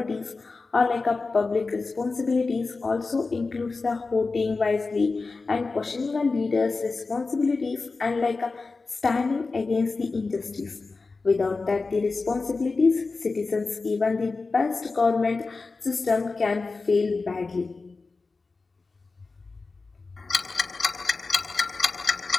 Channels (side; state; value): right; quieter; 4.0 dB